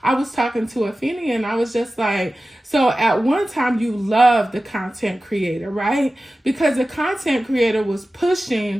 I was talking to Afeni and I was just like, so at one time you loved the content creator, right? Because the content creator was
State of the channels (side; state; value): both; normal; correlation 0.95